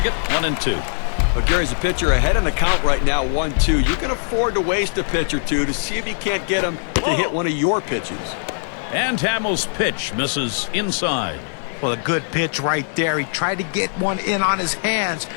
1-2. Well, Gary's a pitcher ahead in the count right now, 1-2. You can afford to waste a pitch or two to see if you can't get him to hit one of your pitches. And Hamels' pitch misses inside. Well, a good pitch right there. He tried to get one in on his hands,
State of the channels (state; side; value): silent; right; digital silence